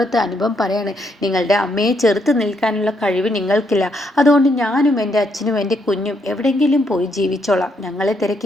അനുപം പറയാണ്, നിങ്ങളുടെ അമ്മയെ ചെറുത്ത് നിൽക്കാനുള്ള കഴിവ് നിങ്ങൾക്കില്ല. അതുകൊണ്ട് ഞാനും എൻ്റെ അച്ഛനും എൻ്റെ കുഞ്ഞും എവിടെയെങ്കിലും പോയി ജീവിച്ചോളാം. ഞങ്ങളെ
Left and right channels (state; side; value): normal; both; correlation 0.75